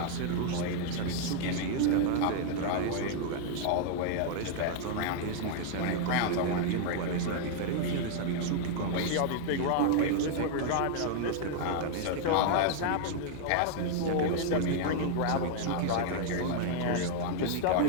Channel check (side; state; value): both; different; correlation 0.00